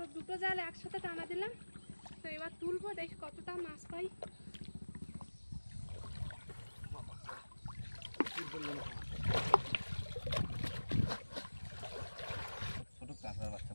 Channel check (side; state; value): both; inverted; correlation -1.00